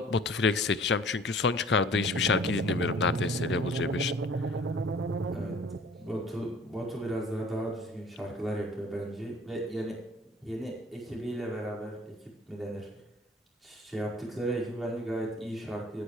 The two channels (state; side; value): normal; both; correlation 0.50